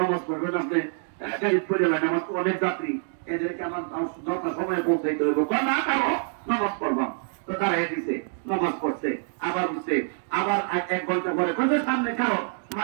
পড়বেন আপনি, গাড়ি চলে লাগে, আমার তো অনেক যাত্রী, এদেরকে আমার যথা সময় পৌঁছাইতে হবে, না করো নামাজ পড়বাম। তো দাঁড়াই দিছে, নামাজ পড়ছে, আবার উঠছে, আবার 1 ঘন্টা পরে কোথায় সামনে কারো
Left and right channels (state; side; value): silent; left; 60 dB below the other